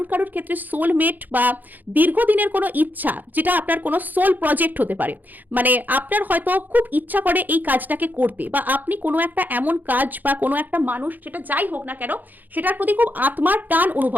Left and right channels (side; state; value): left; late; 0.085 ms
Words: কারুর ক্ষেত্রে সোলমেট বা দীর্ঘদিনের কোনো ইচ্ছা, যেটা আপনার কোনো সোল প্রজেক্ট হতে পারে, মানে আপনার হয়তো খুব ইচ্ছা করে এই কাজটাকে করতে, বা আপনি কোনো একটা এমন কাজ বা কোনো একটা মানুষ, যেটা যাই হোক না কেন, সেটার প্রতি খুব আত্মার টান